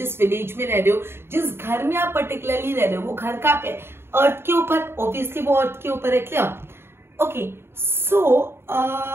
विलेज में रह रहे हो, जिस घर में आप पर्टिकुलरली रह रहे हो, वो घर कहाँ पे है? अर्थ के ऊपर. ऑब्वियसली वो अर्थ के ऊपर है. क्लियर? ओके, सो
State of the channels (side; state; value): left; late; 0.11 ms